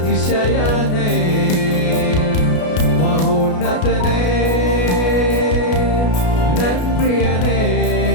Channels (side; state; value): right; late; 33 ms